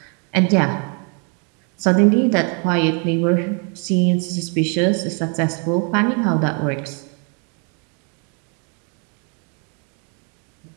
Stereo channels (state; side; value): quieter; left; 37.8 dB